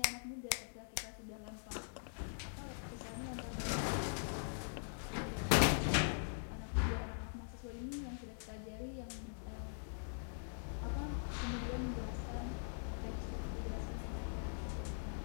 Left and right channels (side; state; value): right; silent; digital silence